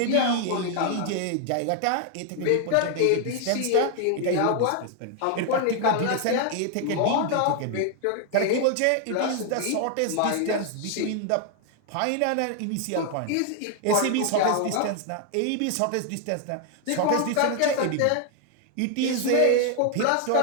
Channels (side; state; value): both; different; correlation 0.00